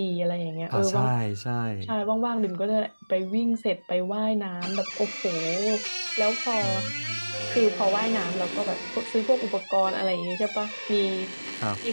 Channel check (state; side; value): inverted; both; correlation -1.00